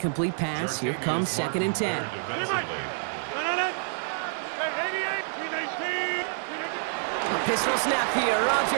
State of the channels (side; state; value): left; silent; digital silence